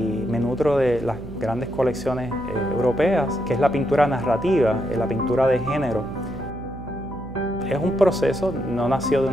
me nutro de las grandes colecciones europeas, que es la pintura narrativa, la pintura de género. Es un proceso, no nació de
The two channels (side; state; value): right; noise; hum, 13 dB below the sound